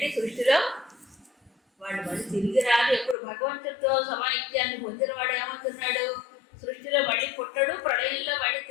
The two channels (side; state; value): right; drops out; at 3.2 s